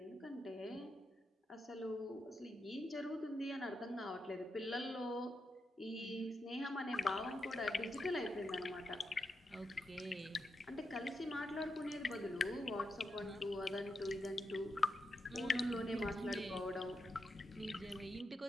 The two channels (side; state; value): both; normal; correlation 0.85